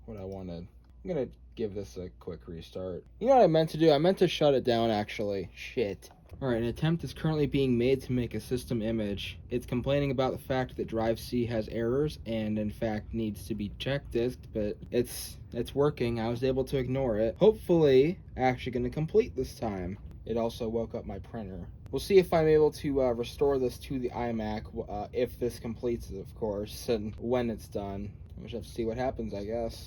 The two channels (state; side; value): identical; both; correlation 1.00